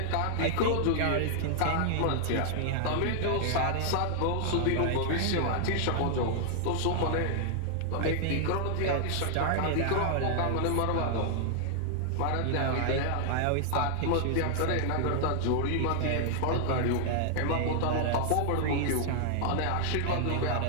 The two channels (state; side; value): different; both; correlation -0.01